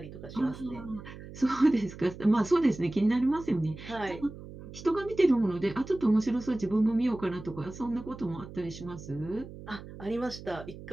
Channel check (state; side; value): noise; right; hum, 14 dB below the sound